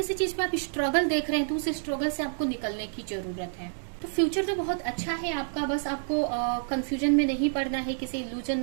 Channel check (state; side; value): silent; left; digital silence